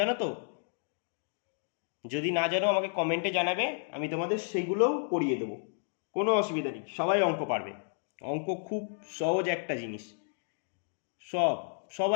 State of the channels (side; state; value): right; silent; digital silence